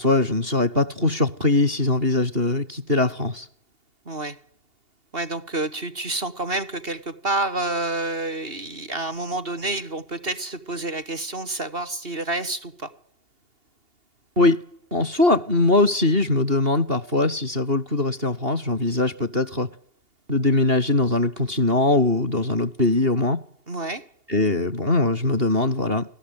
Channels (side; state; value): left; late; 2.8 ms